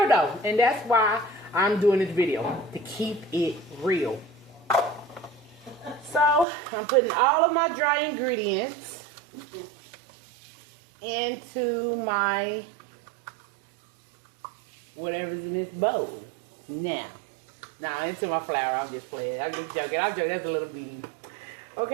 though. And that's why I'm doing this video. To keep it real. So I'm putting all of my dry ingredients into my whatever's in this bowl. Now into my flour. I'm just playing. I'm just joking. That's a little bean.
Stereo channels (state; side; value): drops out; left; at 6.5 s